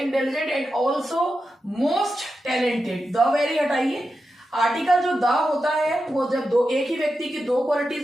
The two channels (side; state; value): both; normal; correlation 0.90